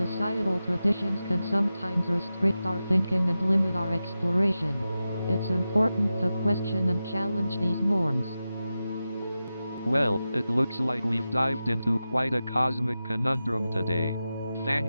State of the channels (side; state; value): both; inverted; correlation -0.92